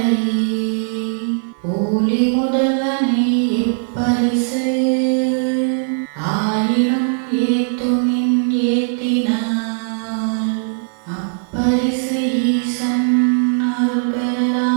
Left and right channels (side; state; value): left; silent; 57 dB below the other